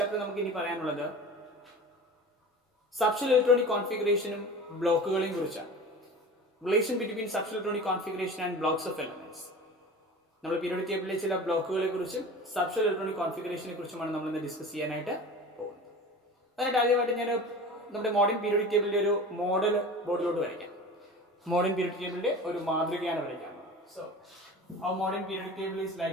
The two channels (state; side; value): normal; both; correlation 0.36